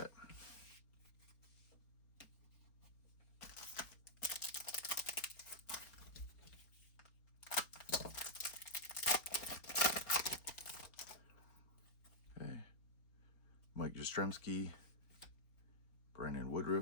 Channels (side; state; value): right; late; 4.1 ms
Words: Okay, Mike Yastrzemski, Brandon